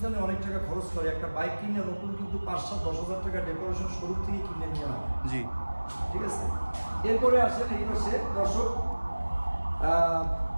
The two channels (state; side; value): inverted; both; correlation -1.00